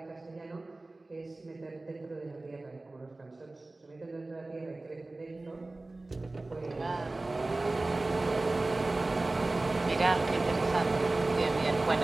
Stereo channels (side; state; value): left; quieter; 3.0 dB